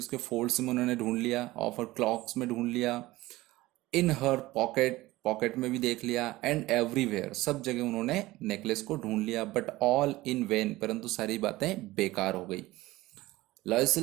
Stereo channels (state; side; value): quieter; left; 18.5 dB